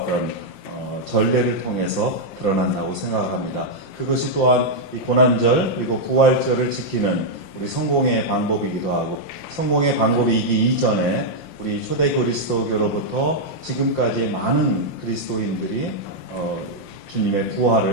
전례를 통해서 드러난다고 생각을 합니다. 그것이 또한 이 고난절 그리고 부활절을 지키는 우리 성공의 방법이기도 하고, 성공의 방법이기 이전에 우리 초대 그리스도교로부터 지금까지 많은 그리스도인들이 주님의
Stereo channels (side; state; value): right; late; 5.7 ms